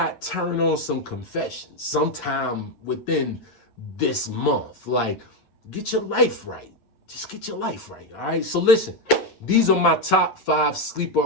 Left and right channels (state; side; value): late; right; 8.6 ms